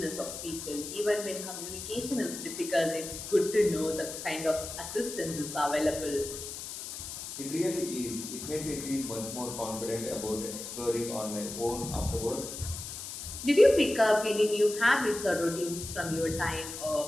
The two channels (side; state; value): left; noise; hiss, 8 dB below the sound